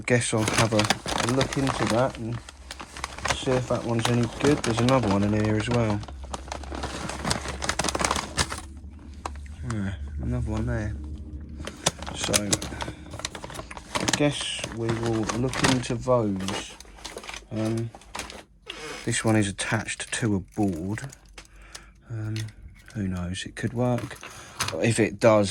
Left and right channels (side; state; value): both; identical; correlation 1.00